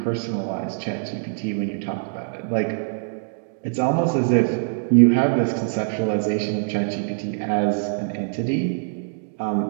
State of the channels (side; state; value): left; silent; digital silence